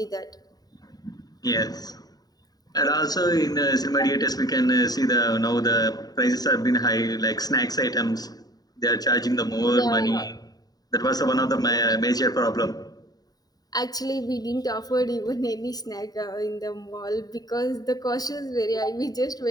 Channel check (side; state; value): right; late; 0.18 ms